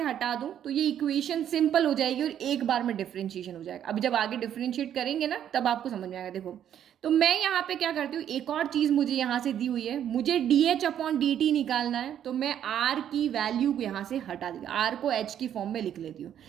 हटा दूं तो ये इक्वेशन सिंपल हो जाएगी और एक बार में डिफरेंशिएशन हो जाएगा। अभी जब आगे डिफरेंशिएट करेंगे ना तब आपको समझ में आएगा। देखो तो मैं यहाँ पे क्या करती हूँ, एक और चीज मुझे यहाँ से दी हुई है, मुझे dh अपॉन dt निकालना है। तो मैं r की वैल्यू को यहाँ से हटा दी, r को h की फॉर्म में लिख लेती हूँ।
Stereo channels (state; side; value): quieter; left; 10.0 dB